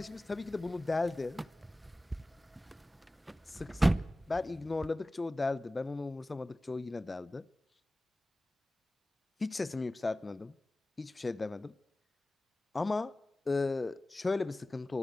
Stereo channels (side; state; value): both; normal; correlation 0.97